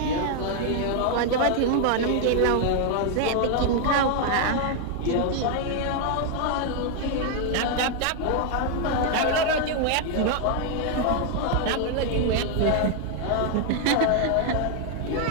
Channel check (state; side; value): different; both; correlation 0.00